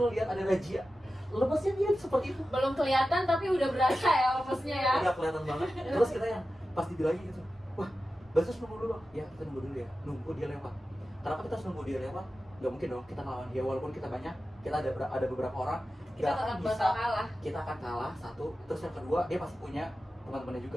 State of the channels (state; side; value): normal; both; correlation 0.93